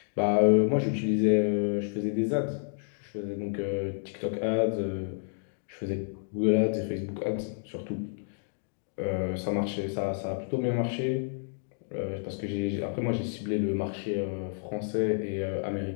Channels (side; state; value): right; silent; digital silence